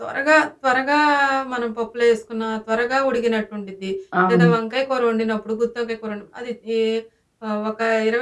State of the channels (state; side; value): identical; both; correlation 1.00